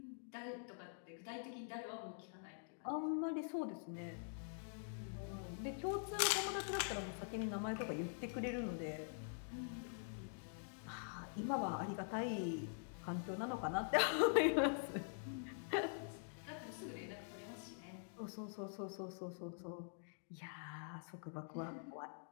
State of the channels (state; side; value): silent; right; digital silence